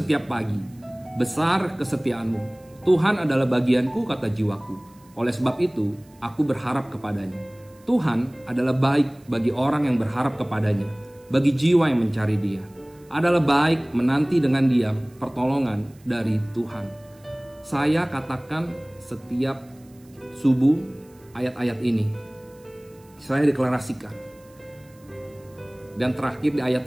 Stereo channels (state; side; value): noise; right; hiss, 30 dB below the sound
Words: pagi, besar kesetiaanmu. Tuhan adalah bagianku," kata jiwaku. "Oleh sebab itu, aku berharap kepadanya." Tuhan adalah baik bagi orang yang berharap kepadanya, bagi jiwa yang mencari Dia. Adalah baik menanti dengan diam pertolongan dari Tuhan. Saya katakan setiap subuh ayat-ayat ini saya deklarasikan. Dan terakhir, di ayat